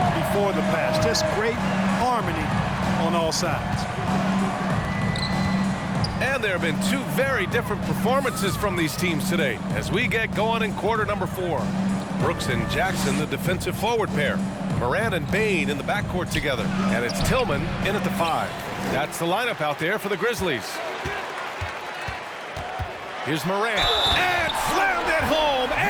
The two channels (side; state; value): both; identical; correlation 1.00